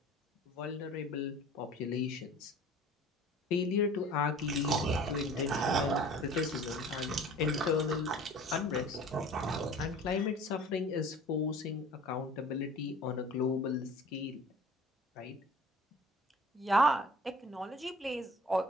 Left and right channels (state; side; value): normal; both; correlation 0.46